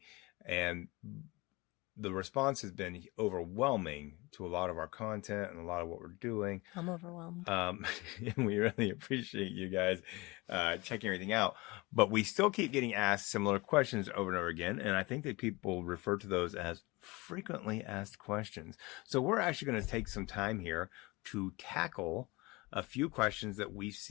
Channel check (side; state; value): right; quieter; 23.7 dB